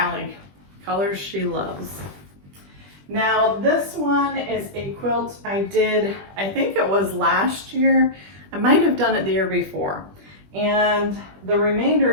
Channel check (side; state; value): left; late; 20 ms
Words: Colors she loves. Now this one is a quilt I did, I think it was last year. I might have done it the year before. And the remainder